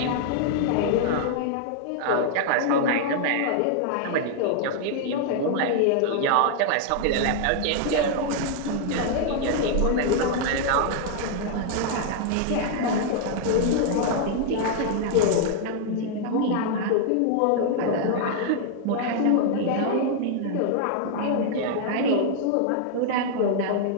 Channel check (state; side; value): different; both; correlation 0.00